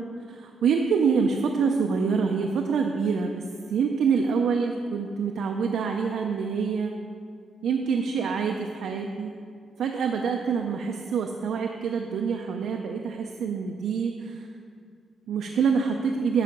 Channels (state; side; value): quieter; left; 5.4 dB